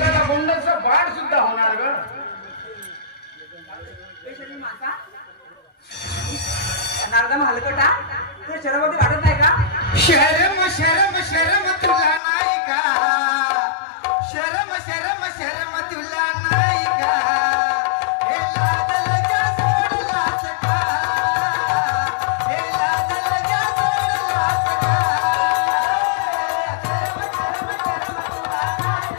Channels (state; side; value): drops out; right; at 12.2 s